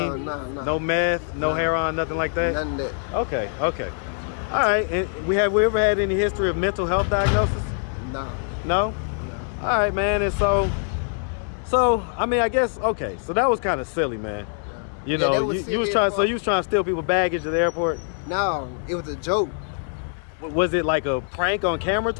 no meth, no heroin, nothing like that? None of that. Okay. All right, and we ever had any history of mental health diagnosis? Nah. No? All right, man, and so I mean, I guess, okay, so that was kind of silly, man. You know, you was trying to steal people baggage at the airport? No, it was a joke. Was it like a prank on camera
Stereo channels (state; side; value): silent; right; 62 dB below the other